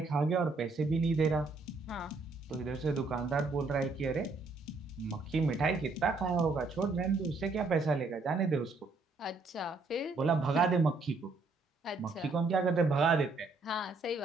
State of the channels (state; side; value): quieter; left; 3.7 dB